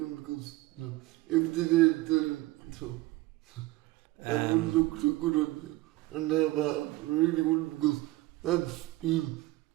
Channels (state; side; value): quieter; left; 19.2 dB